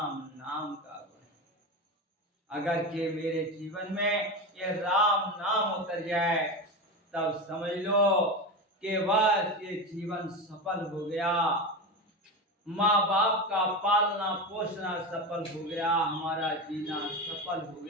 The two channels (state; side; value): normal; both; correlation 0.21